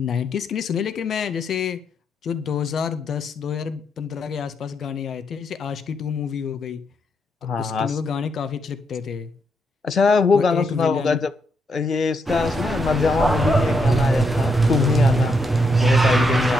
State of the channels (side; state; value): both; normal; correlation 0.79